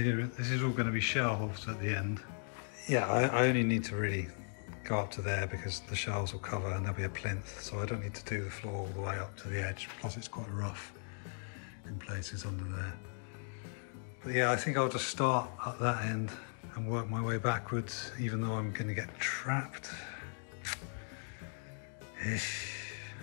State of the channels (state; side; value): silent; right; 53 dB below the other